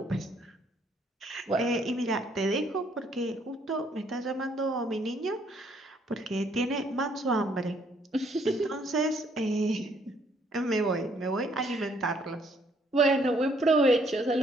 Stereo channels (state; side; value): normal; both; correlation 0.66